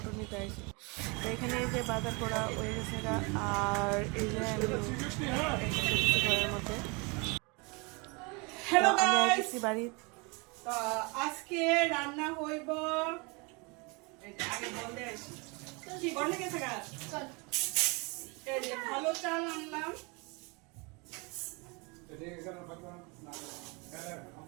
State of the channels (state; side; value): quieter; left; 29.5 dB